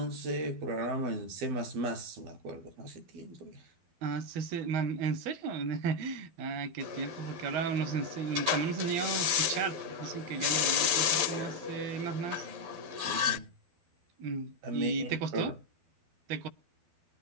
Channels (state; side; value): late; left; 12 ms